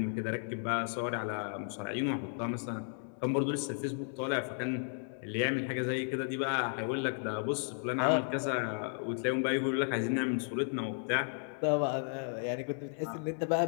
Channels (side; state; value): right; silent; 55 dB below the other